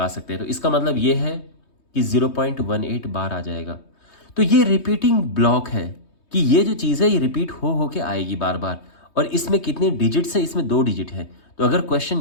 सकते हैं। तो इसका मतलब ये है कि 0.18 बार आ जाएगा। तो ये रिपीटिंग ब्लॉक है कि ये जो चीज़ है ये रिपीट हो के आएगी बार बार। और इसमें कितने डिजिट्स हैं, इसमें 2 डिजिट है। तो अगर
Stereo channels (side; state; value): right; late; 3.2 ms